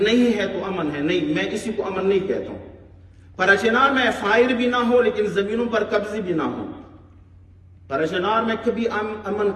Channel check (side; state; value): both; identical; correlation 1.00